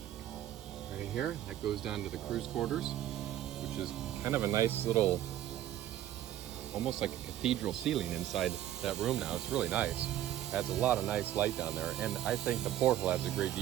right here. That goes down to the cruise quarters, which is kind of a nice little, almost like a cathedral ceiling inside that room now. It's really nice. Adds a lot of nice light down there, and I think the porthole adds a great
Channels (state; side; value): quieter; left; 12.6 dB